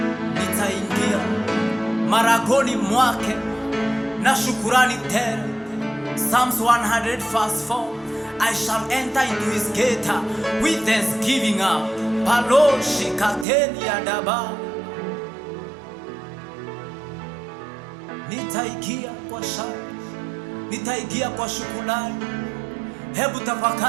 nitaingia maragoni mwake na shukurani tele. Psalms 100 verse 4, I shall enter into his gate with thanksgiving. Paloshi kateni ya daba, nitaingia kwa shangwe, nitaingia kwa shukrani. Hebu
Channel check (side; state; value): left; drops out; at 13.5 s